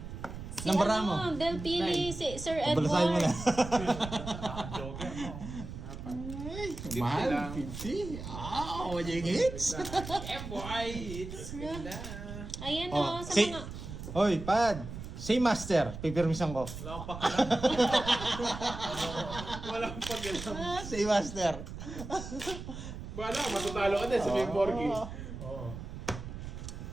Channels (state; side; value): noise; right; rumble, 9 dB below the sound